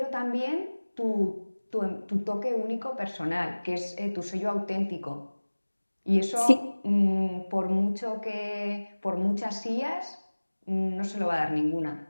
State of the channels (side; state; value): both; inverted; correlation -1.00